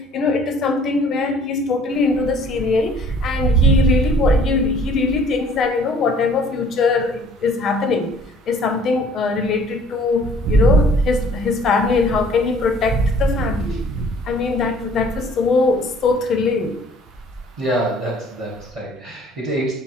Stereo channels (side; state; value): both; normal; correlation 0.55